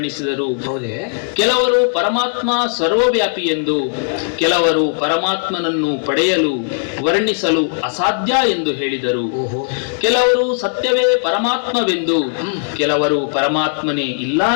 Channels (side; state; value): right; silent; digital silence